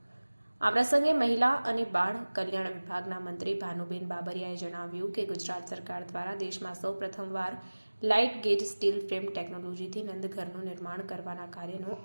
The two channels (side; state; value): both; inverted; correlation -1.00